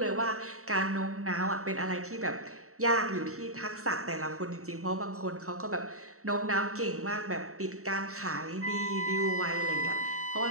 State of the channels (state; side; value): late; left; 0.64 ms